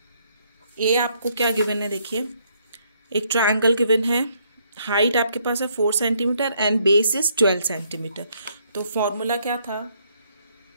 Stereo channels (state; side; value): inverted; both; correlation -0.70